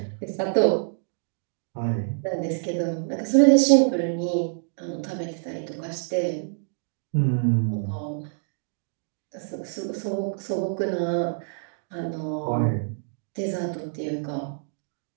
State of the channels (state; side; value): silent; left; digital silence